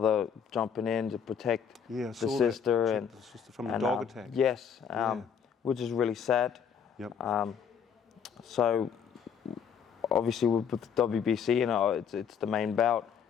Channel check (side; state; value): right; quieter; 7.4 dB